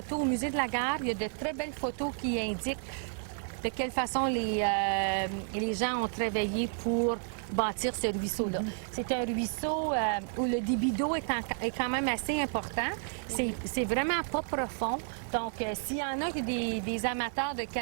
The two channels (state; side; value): silent; left; 57 dB below the other